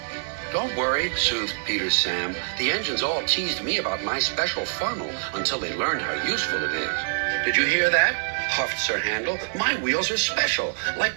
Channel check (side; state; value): left; silent; digital silence